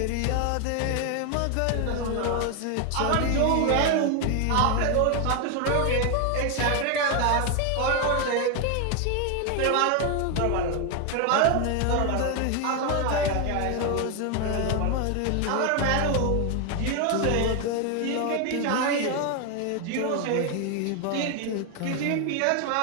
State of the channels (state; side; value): different; both; correlation 0.01